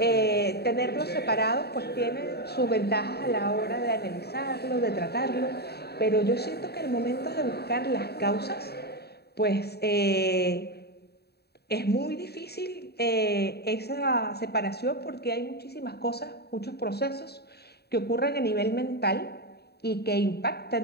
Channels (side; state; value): right; late; 0.47 ms